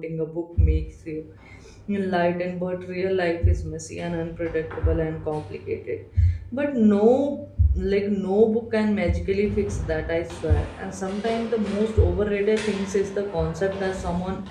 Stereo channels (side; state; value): both; identical; correlation 1.00